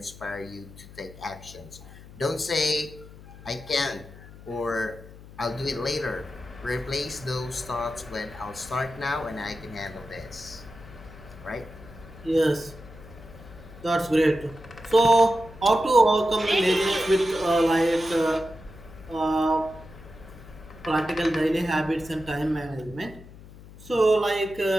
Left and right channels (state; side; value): noise; left; hum, 18 dB below the sound